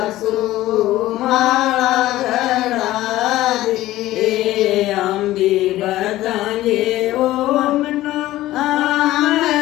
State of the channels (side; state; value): right; quieter; 15.7 dB